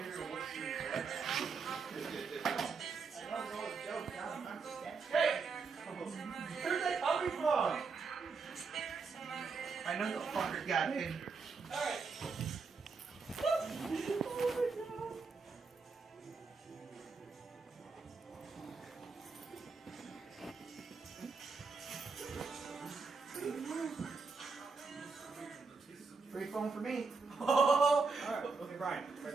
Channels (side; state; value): left; quieter; 4.7 dB